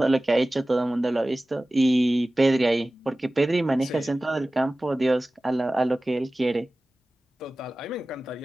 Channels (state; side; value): normal; both; correlation 0.97